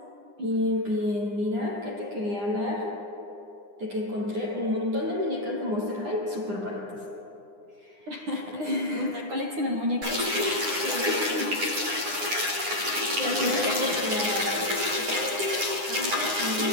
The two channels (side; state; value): left; late; 9.8 ms